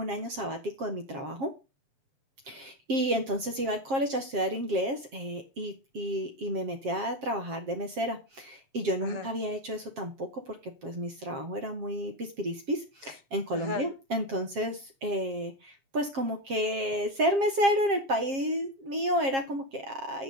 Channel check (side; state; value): left; late; 7.4 ms